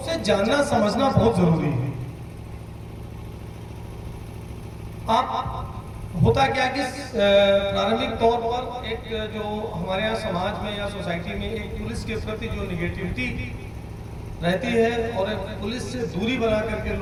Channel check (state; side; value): identical; both; correlation 1.00